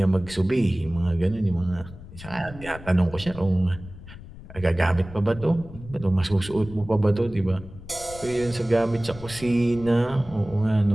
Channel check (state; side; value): noise; left; rumble, 16 dB below the sound